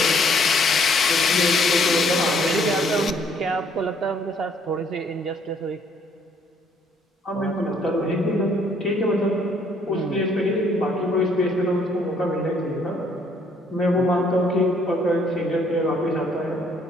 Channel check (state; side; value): normal; both; correlation 0.64